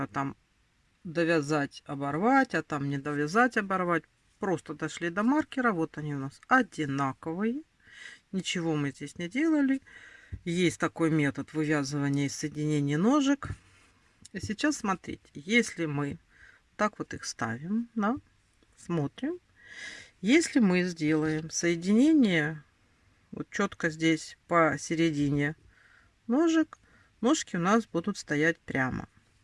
там довязать, оборвать, а там не довязать, оборвать. Просто дошли до маркера. Вот они у нас одинаковые. Ничего мы здесь не делали. Есть такой метод вывязывания и соединения ножек. И сейчас смотрите, если мы так вот их ставим, да, смотрим. Если мы сделаем соединение вот четко здесь посередине ножек, ножки у нас будут стоять прямо.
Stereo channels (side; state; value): both; identical; correlation 1.00